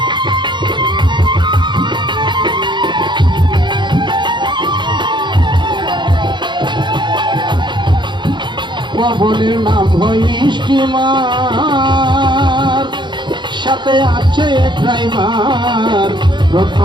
পবনের নাম হয় স্টিমার, সাথে আছে ড্রাইভার,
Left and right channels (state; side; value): late; left; 0.22 ms